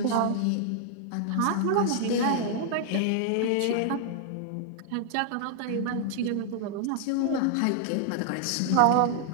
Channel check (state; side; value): different; both; correlation -0.01